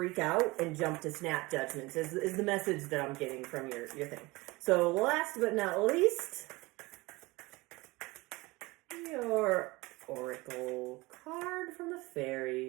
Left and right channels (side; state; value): left; quieter; 22.5 dB